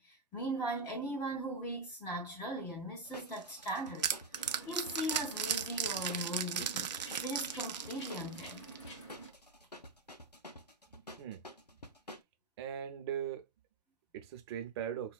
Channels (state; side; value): quieter; left; 3.9 dB